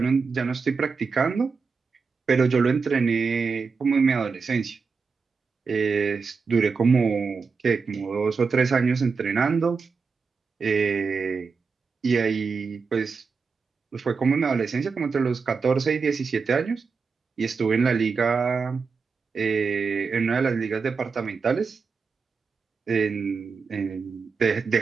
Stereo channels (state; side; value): quieter; left; 5.0 dB